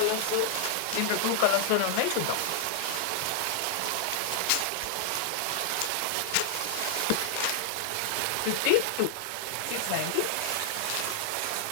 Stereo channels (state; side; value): different; both; correlation 0.00